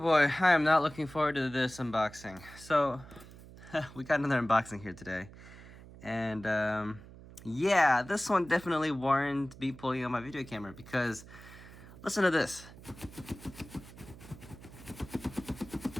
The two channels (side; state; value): right; noise; hum, 18 dB below the sound